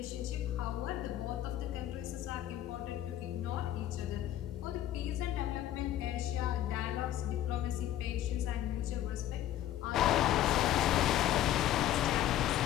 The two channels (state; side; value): quieter; right; 12.3 dB